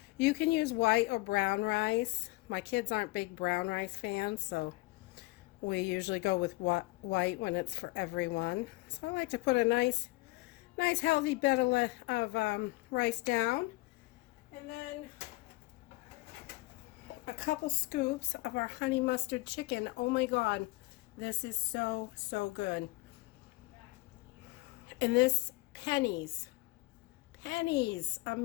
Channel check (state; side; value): quieter; right; 22.7 dB